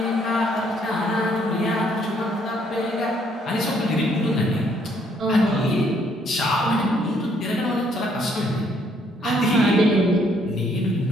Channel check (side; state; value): both; normal; correlation 0.67